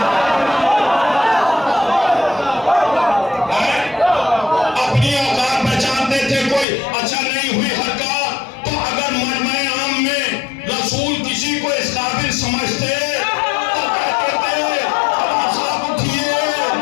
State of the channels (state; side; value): drops out; right; at 6.7 s